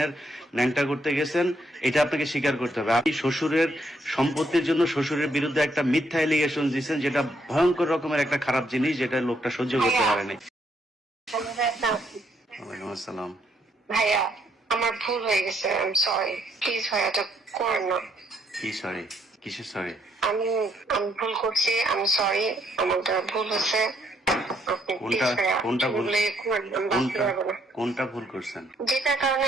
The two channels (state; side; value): normal; both; correlation 0.72